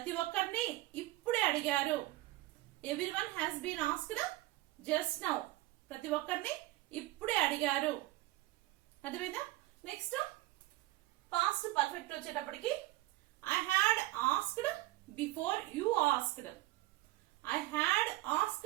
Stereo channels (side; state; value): left; quieter; 17.9 dB